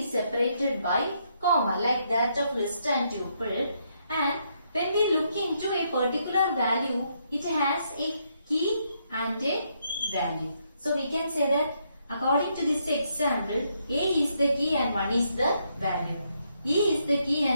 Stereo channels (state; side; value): inverted; both; correlation -0.76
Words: separated by comma like that of list and tuple, and when we look into a particular value, it has a key and a value. So we can say that according to this example, A is the key and 1 is the value. E is the key